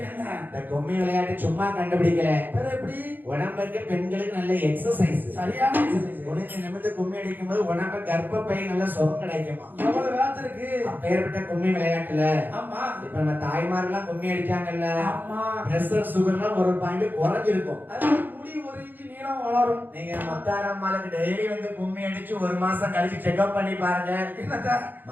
இந்த கும்மி விளையாட்டு சும்மா கண்டுபிடிக்கல. எப்படி உடம்புக்கு பெண்களுக்கு நல்ல எக்ஸசைஸ், சரியான எக்ஸசைஸ். உனக்கு நிமிர்ந்து கும்மி அடிக்கும் போது உடம்பு கர்ப்பப்பை நல்ல சுகம் கிடைக்குமா. எவ்வளவு வேலை இருக்கு அப்பேற்பட்ட கும்மி விளையாட்டுல. ஆமா, இப்ப நம்ம தாய்மாரெல்லாம் கும்மி அடிச்சாங்கல்ல, ஆமா, பிரஷர் சுகர்லாம் ஒரு பாயிண்ட் குறைஞ்சிருக்கும். முடி 1 இன்ச் நீளம் வளரும். நீங்க மத்தாரம்மாளுக்கு டெய்லி வந்து கும்மி அடிச்சு 1 மாசம் கழிச்சு செக்அப் பண்ணி பாருங்க.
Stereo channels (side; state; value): left; late; 0.089 ms